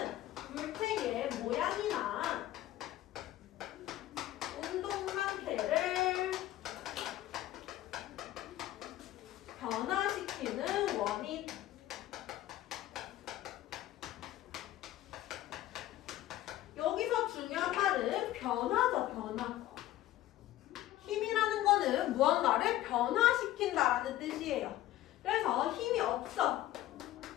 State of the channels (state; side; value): quieter; right; 14.4 dB